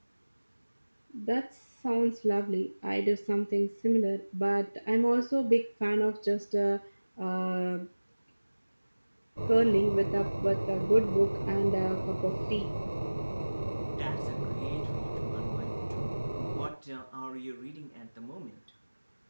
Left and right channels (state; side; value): inverted; both; correlation -1.00